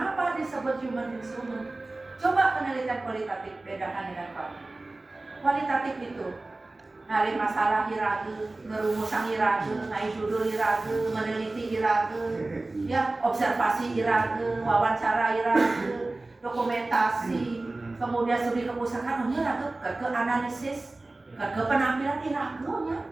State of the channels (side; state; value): left; quieter; 3.0 dB